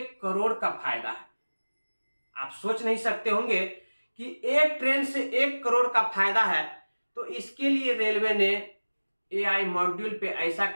करोड़ का फायदा है। आप सोच नहीं सकते होंगे कि एक ट्रेन से 1 करोड़ का फायदा है। तो इसके लिए रेलवे ने एआई मॉड्यूल पे ऐसा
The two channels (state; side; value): inverted; both; correlation -1.00